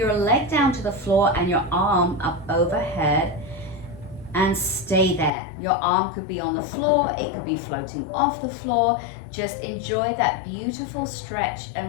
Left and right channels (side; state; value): right; drops out; at 5.3 s